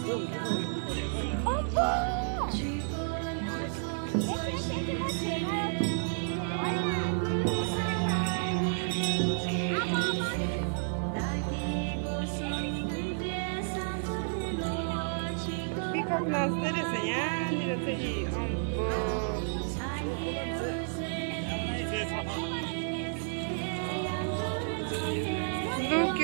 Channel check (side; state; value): left; silent; digital silence